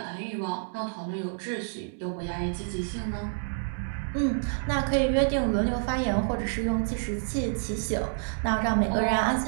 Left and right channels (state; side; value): silent; left; digital silence